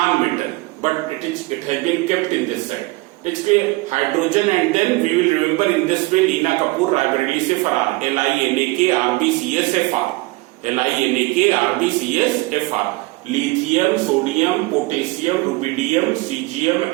but it has been kept in this side. It's clear? Hydrogen, and then we will remember in this way Lina Kapoor, Raebareli se Farar, LINAK RBCSFR, LINAK RBCSFR, lithium, sodium, potassium, rubidium, cesium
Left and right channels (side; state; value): left; quieter; 22.9 dB